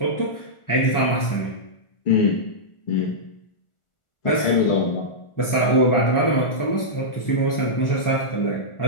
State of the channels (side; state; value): right; late; 1.4 ms